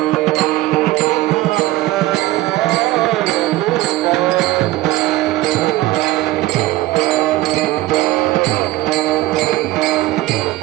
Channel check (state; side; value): quieter; left; 17.3 dB